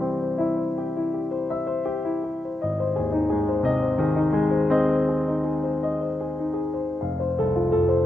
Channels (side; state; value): both; normal; correlation 0.88